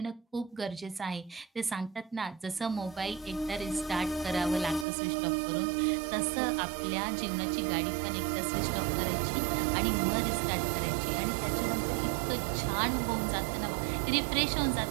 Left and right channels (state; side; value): drops out; left; at 4.9 s